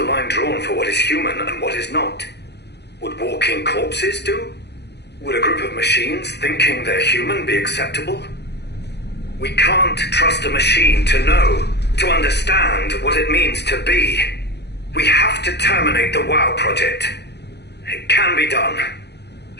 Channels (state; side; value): late; right; 0.49 ms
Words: line drawn for what is human and what is not? Would walking corpses do? Would a group of machines thinking they're human be acceptable? We can't trust a machine to know, to understand what it means to be. We have to terminate the WoW project. It can be done.